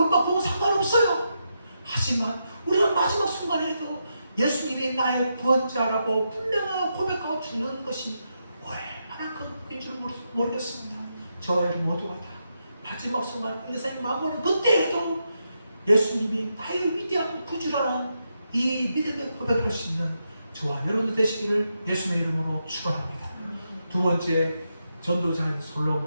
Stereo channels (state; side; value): inverted; both; correlation -0.84